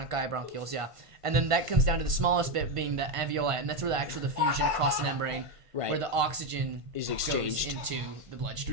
yeah. And then that comes down to the smallest bit being the alveoli, and that's where the fusion across the membrane. Right. Where the oxygen is exchanged into the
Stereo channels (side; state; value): left; late; 1.5 ms